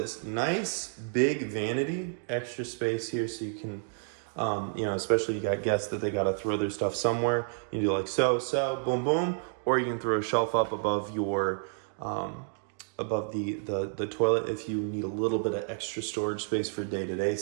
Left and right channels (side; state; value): left; silent; digital silence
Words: nice big vanity, extra space here so you can, you know, especially you got guests that they got to throw their stuff somewhere. You can do like so, boom, boom, or you can throw a shelf up above your, above the toilet if you need a little bit of extra storage space for day-to-day